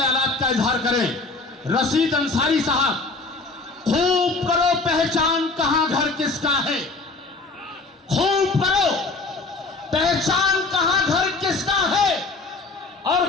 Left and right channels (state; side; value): quieter; right; 3.7 dB